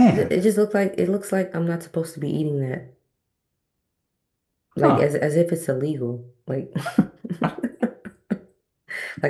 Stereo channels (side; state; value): both; identical; correlation 1.00